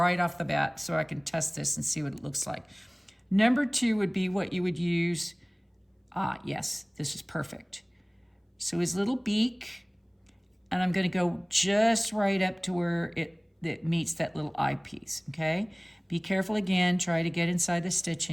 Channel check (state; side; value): identical; both; correlation 1.00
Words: off the bat so I can test this and see what it looks like. Number 2 would be what you would use. Yes, this is perfect. So his little beak, and I'm gonna go just right up to where it meets that little eyepiece, okay? Be careful again, try to get inside the